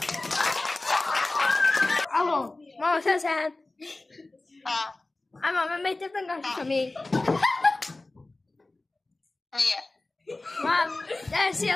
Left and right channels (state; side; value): quieter; right; 3.1 dB